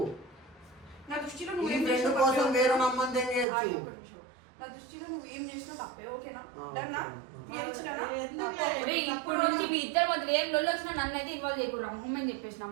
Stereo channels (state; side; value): drops out; left; at 3.5 s